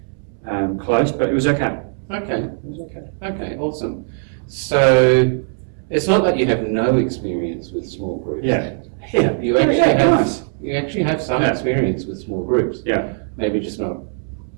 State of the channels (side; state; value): left; silent; 66 dB below the other